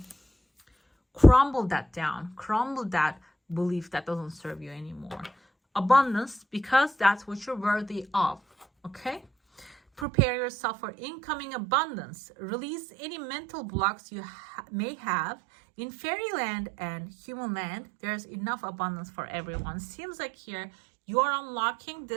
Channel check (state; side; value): drops out; left; at 10.1 s